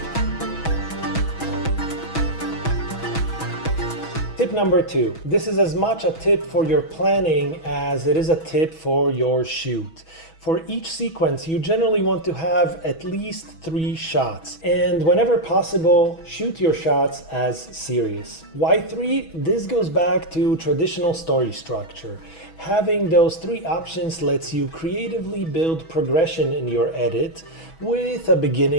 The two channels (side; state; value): right; late; 6.2 ms